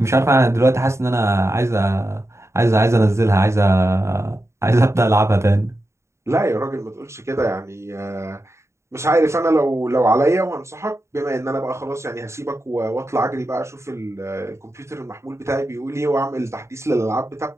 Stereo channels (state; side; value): late; left; 0.14 ms